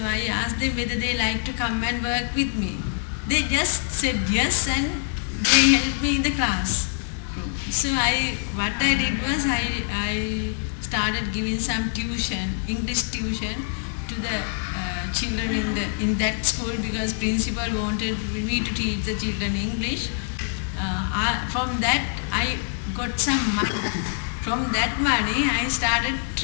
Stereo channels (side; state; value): right; silent; 62 dB below the other